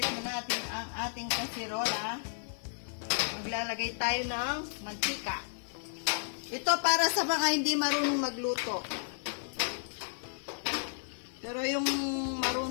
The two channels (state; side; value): silent; right; digital silence